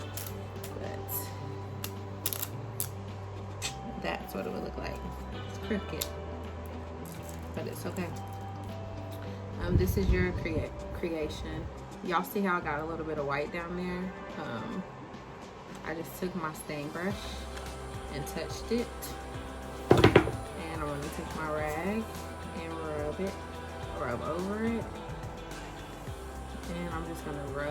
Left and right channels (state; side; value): identical; both; correlation 1.00